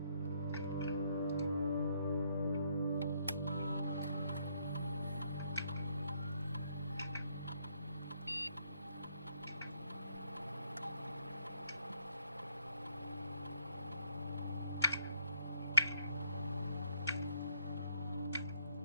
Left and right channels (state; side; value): inverted; both; correlation -0.72